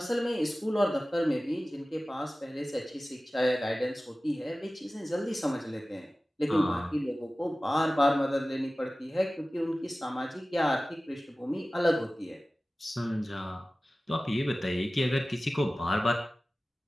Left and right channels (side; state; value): both; normal; correlation 0.97